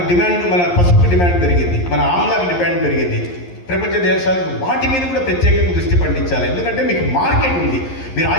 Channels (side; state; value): right; late; 11 ms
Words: డిమాండ్, మన పసుపు డిమాండ్ పెరిగింది, మన ఆమ్లాకి డిమాండ్ పెరిగింది. ప్రపంచ దేశాలకు వాటి మీద కూడా ప్రత్యేకంగా దృష్టి పండించాలి. ఎందుకంటే మీకు మార్కెట్ ఉంది. మీరు